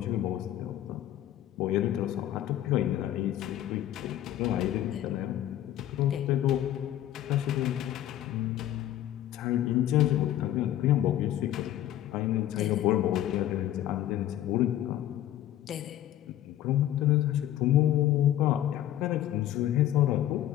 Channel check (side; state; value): right; quieter; 12.7 dB